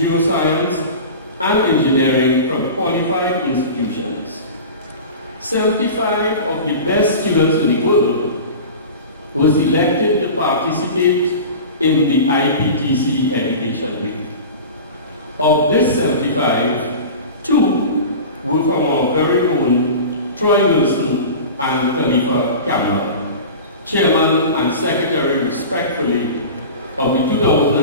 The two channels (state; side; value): inverted; both; correlation -0.33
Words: and engineering from qualified institutions. 75 of the best students in the world were selected to participate in the IPTC Education Week. Of this 75, 2 were from our very own Troy Wilson and Khalifa Cameron, Chairman and Secretary respectfully of the